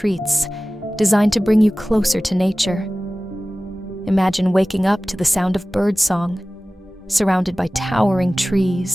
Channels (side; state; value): both; normal; correlation 0.97